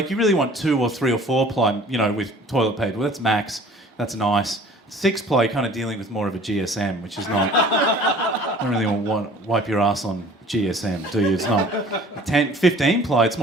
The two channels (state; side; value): normal; both; correlation 0.49